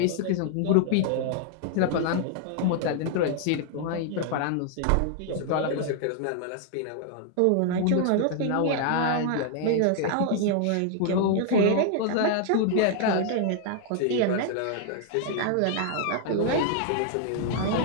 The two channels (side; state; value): both; different; correlation 0.00